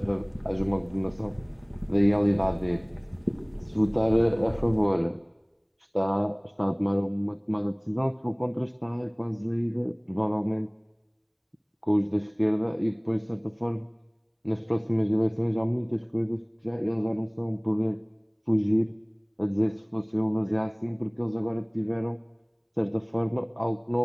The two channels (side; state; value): both; identical; correlation 1.00